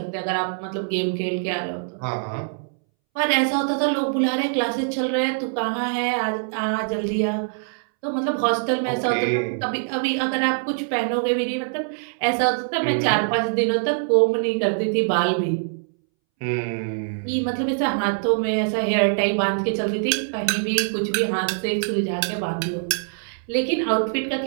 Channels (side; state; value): left; silent; 63 dB below the other